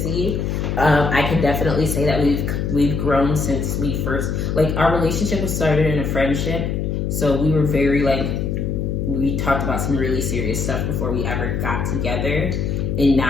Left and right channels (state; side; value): noise; left; hum, 1 dB below the sound